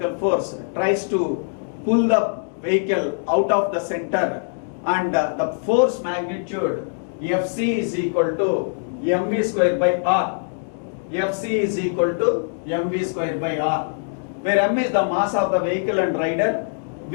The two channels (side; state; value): right; silent; digital silence